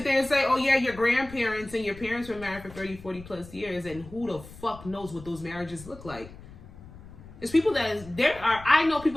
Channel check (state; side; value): noise; left; rumble, 17 dB below the sound